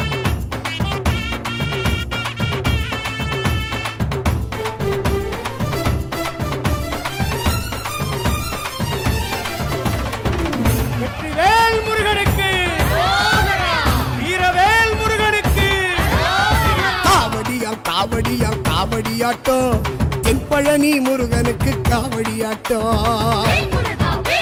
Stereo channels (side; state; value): both; identical; correlation 1.00